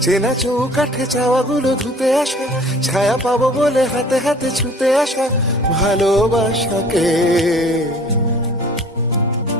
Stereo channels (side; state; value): both; normal; correlation 0.50